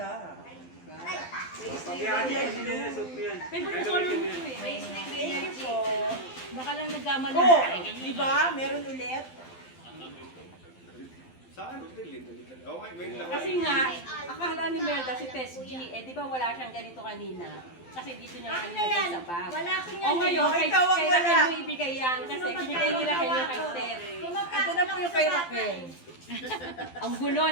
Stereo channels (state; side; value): late; right; 12 ms